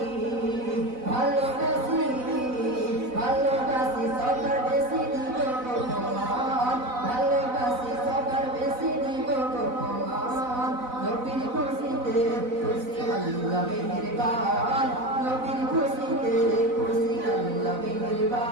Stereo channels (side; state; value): left; late; 4.0 ms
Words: ভালোবাসি ভালোবাসি সবার বেশি দিব ভগবান ভালোবাসি সবার বেশি দিব ভগবান নবীর খুশিতে খুশি আল্লাহ মেহেরবান নবীর খুশিতে খুশি আল্লাহ